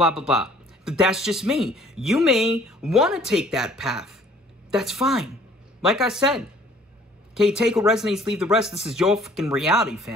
blah, blah. But that's just me. You may want to take that path. That's fine. Like I said, okay, take what resonates, leave the rest. This is your fucking reality,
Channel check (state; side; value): normal; both; correlation 0.56